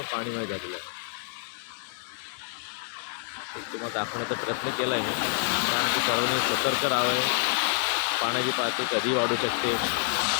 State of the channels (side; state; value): right; silent; 57 dB below the other